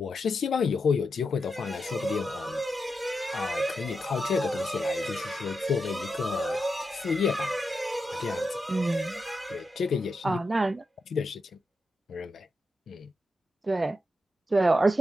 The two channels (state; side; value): normal; both; correlation 0.87